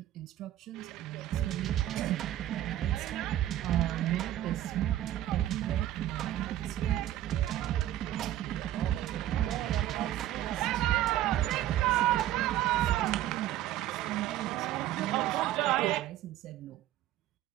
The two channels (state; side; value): quieter; left; 13.3 dB